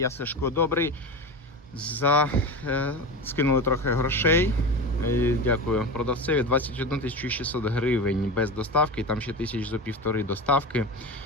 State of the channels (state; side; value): normal; both; correlation 0.25